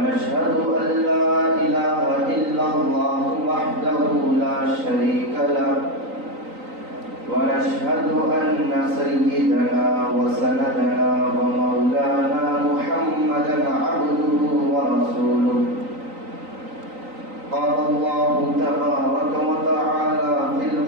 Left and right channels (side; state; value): left; late; 3.9 ms